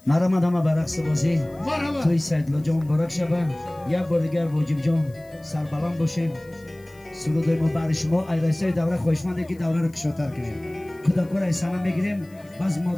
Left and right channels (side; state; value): left; noise; hiss, 29 dB below the sound